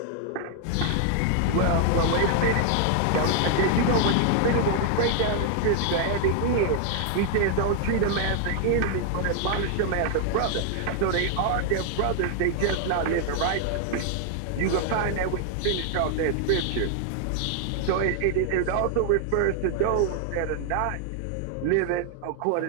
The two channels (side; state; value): both; different; correlation 0.00